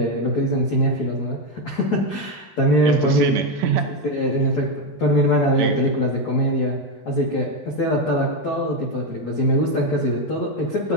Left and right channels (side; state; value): right; late; 4.6 ms